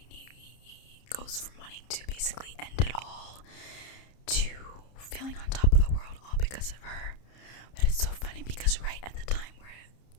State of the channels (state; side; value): late; right; 30 ms